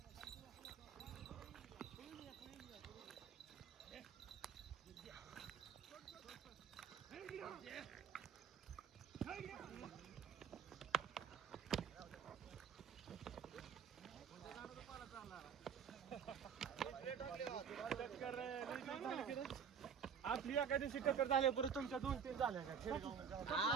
आपली एका दिवशी टक्कर झाल्या परत तुमच्या 2-3 झाल्या का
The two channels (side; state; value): left; quieter; 7.3 dB